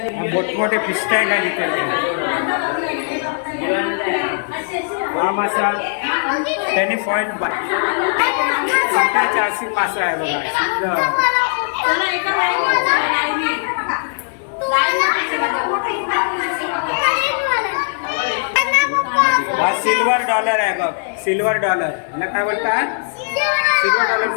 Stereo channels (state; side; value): silent; right; digital silence